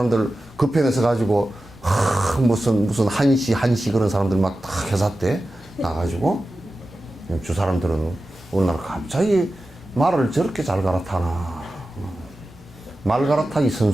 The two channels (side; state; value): both; normal; correlation 0.94